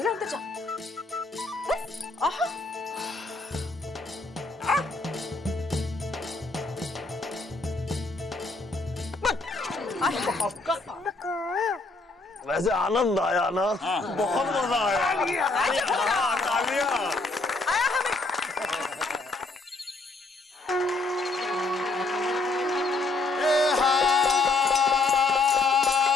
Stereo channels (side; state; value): right; quieter; 3.3 dB